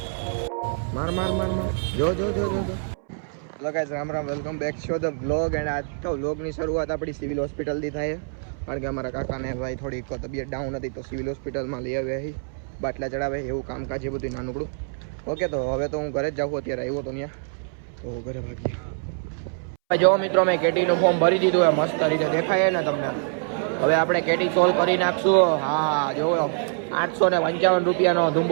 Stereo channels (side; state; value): left; silent; 62 dB below the other